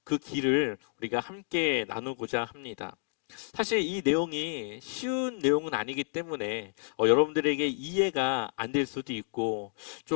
그 길을 우리가 함께 나누고자 합니다. 사실 이 내용이 쉬운 내용은 아니기 때문에 여러분들에게 이해가 안 될 수도 있고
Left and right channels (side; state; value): right; silent; 58 dB below the other